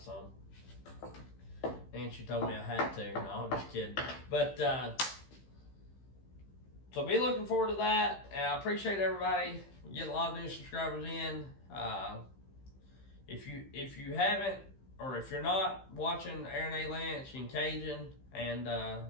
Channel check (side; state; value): right; late; 15 ms